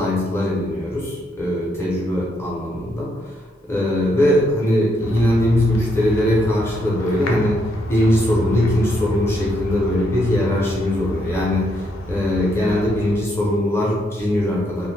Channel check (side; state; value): both; normal; correlation 0.76